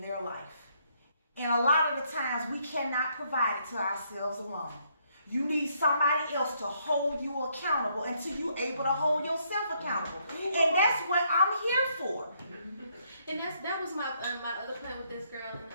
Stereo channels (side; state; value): both; inverted; correlation -0.72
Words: life. And a lot of the times we cannot provide it to ourselves alone. You need somebody else to hold you accountable until you're able to hold yourself accountable. And that's what I'm here for. And that was my other point with this girl, and